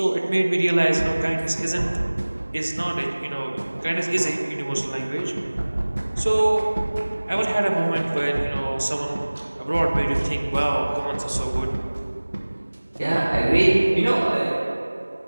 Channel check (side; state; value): both; inverted; correlation -1.00